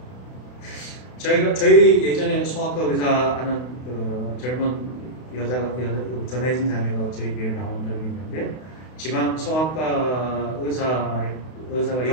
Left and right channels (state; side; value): late; right; 32 ms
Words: 거예요. 저희 예전에 소아과 의사 하는 그 젊은 전혜진 자매가 저희 교회에 나온 적이 있는데, 지방 소아과 의사가